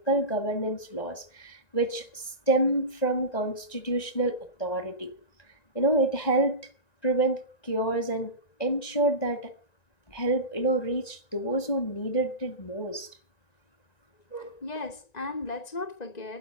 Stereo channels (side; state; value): right; late; 1.9 ms